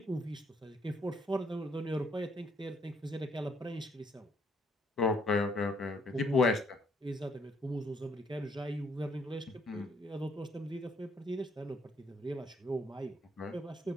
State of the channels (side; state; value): both; normal; correlation 0.69